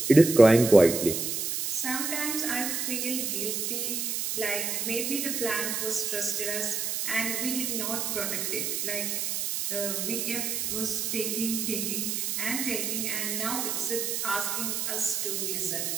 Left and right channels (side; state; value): right; noise; hiss, 1 dB below the sound